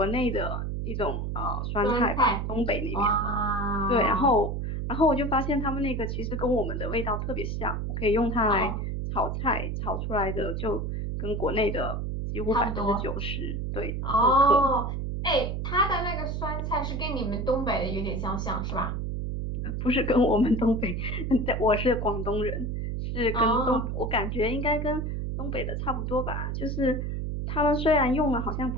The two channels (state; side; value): noise; right; hum, 2 dB below the sound